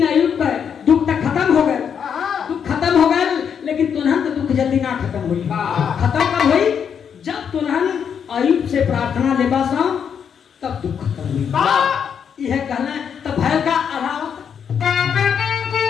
अयुब का दुख तक खत्म हो गए, दुख खत्म हो गए, लेकिन तुनहन तो दुख जल्दी ना खत्म हुई। खत्म कब हुई? जब तुनहन अयुब से प्रार्थना लेबा सा तब दुख खत्म हुई। यह कहना तब भय का अभाव।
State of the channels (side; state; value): right; quieter; 7.5 dB